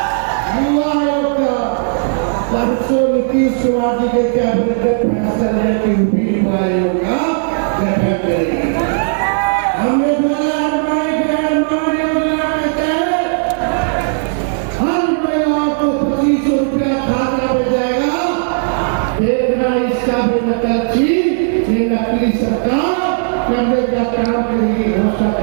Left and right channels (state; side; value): silent; left; digital silence